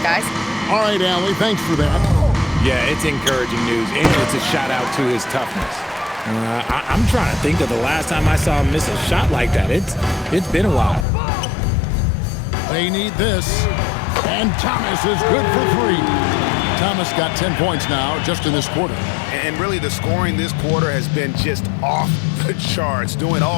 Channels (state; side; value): drops out; right; at 11.1 s